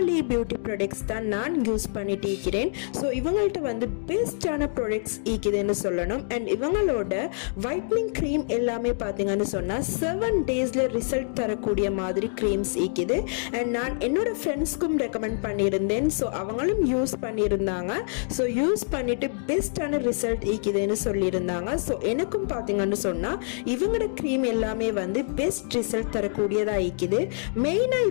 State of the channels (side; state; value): right; silent; digital silence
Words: பியூட்டி ப்ராடக்ட்ஸ் தான் நான் யூஸ் பண்ணிட்டு இருக்கிறேன். ஸோ இவங்கள்ட்ட வந்து பெஸ்டான ப்ராடக்ட்ஸ் இருக்குதுன்னு சொல்லணும். அண்ட் இவங்களோட வைட்னிங் க்ரீம் எல்லாமே பாத்தீங்கன்னு சொன்னா 7 டேஸ்ல ரிசல்ட் தரக்கூடிய மாதிரி க்ரீம்ஸ் இருக்குது. அண்ட் நான் என்னோட ஃப்ரெண்ட்ஸ்க்கும் ரெக்கமெண்ட் பண்ணியிருந்தேன். ஸோ அவங்களும் யூஸ் பண்ணியிருந்தாங்க. ஸோ யூஸ் பண்ணிட்டு பெஸ்டான ரிசல்ட் இருக்குதுன்னு சொல்லியிருந்தாங்க. ஸோ எனக்கும் பார்த்தீங்கன்னு சொன்னால் இவங்களோட க்ரீம் எல்லாமே வந்து பெஸ்ட் ரிசல்ட் தரக்கூடியதாக இருக்குது. மெயினாக